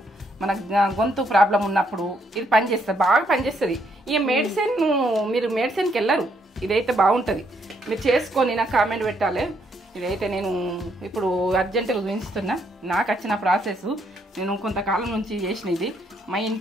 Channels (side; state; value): both; normal; correlation 0.73